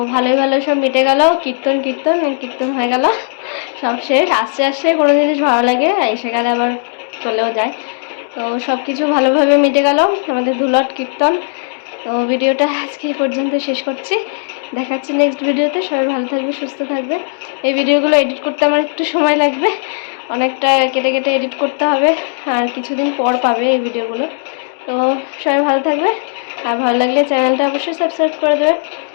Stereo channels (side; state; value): right; silent; digital silence